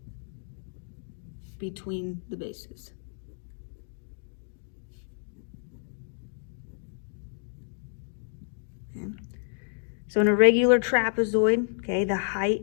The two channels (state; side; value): silent; right; digital silence